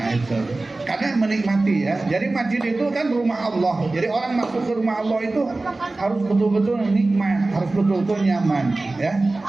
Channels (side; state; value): left; quieter; 3.1 dB